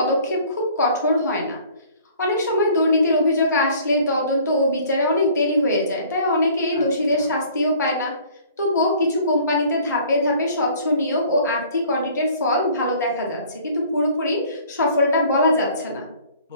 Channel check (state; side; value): inverted; both; correlation -0.53